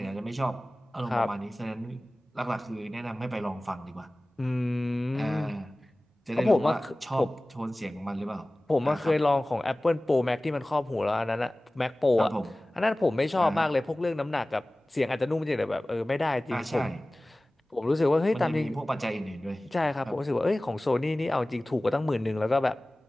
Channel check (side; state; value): both; normal; correlation 0.98